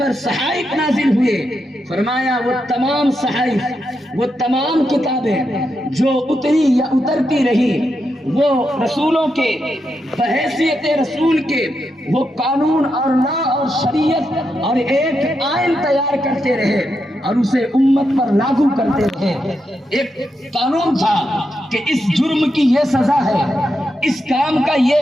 صحائف نازل ہوئے، فرمایا وہ تمام صحائف، وہ تمام کتابیں جو اتری یا اترتی رہی، وہ رسولوں کے بحیثیت رسول کے وہ قانون اور لا اور شریعت اور ایک آئین تیار کرتے رہے اور اسے امت پر لاگو کرتے رہے۔ ایک قانون تھا کہ اس جرم کی یہ سزا ہے، اس کام کا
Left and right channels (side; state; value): both; normal; correlation 0.84